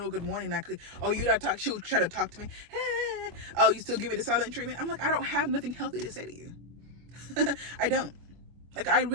good morning. You don't talk. She would try to talk to me. Hey, oh, you still give me the silent treatment? I'm like, I don't have nothing healthy to say to you. I don't. Like, I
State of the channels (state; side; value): late; left; 24 ms